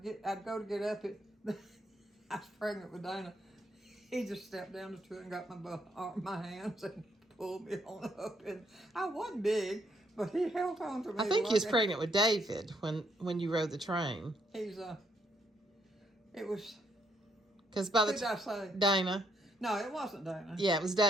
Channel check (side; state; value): both; normal; correlation 0.72